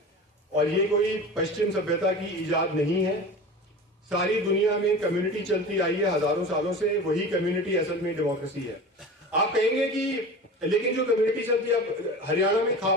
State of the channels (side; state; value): both; normal; correlation 0.34